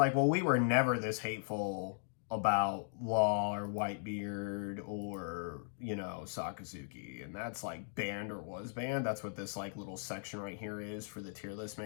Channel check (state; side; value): silent; right; digital silence